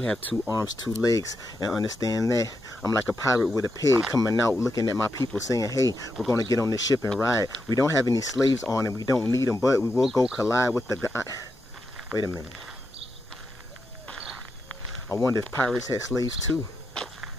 2 arms, 2 legs, and understand that I'm like a pirate with a pig coming out looking at my people saying, hey, we're going to get on this ship and ride. We don't have any slaves on and we don't need them, but we will go collide with the guy. Wait a minute. I wonder if pirates had slaves too.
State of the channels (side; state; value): both; normal; correlation 0.85